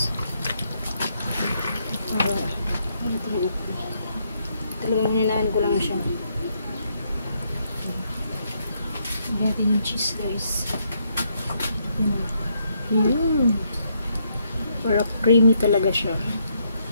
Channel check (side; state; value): both; inverted; correlation -0.75